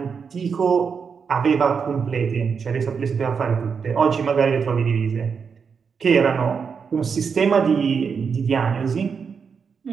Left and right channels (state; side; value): quieter; left; 6.1 dB